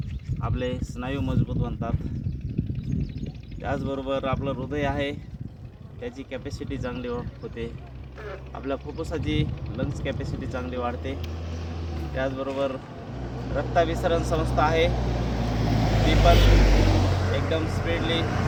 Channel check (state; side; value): identical; both; correlation 1.00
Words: आपले स्नायू मजबूत बनतात. त्याचबरोबर आपलं हृदय आहे त्याची कॅपॅसिटी चांगली होते. आपल्या फुफ्फुसाची लंग्स कॅपॅसिटी चांगली वाढते. त्याचबरोबर रक्ताभिसरण संस्था आहे ती पण एकदम स्पीडली